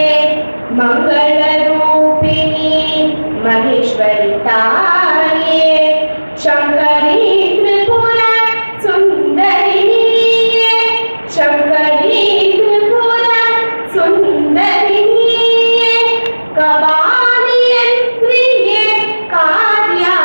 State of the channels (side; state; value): both; inverted; correlation -1.00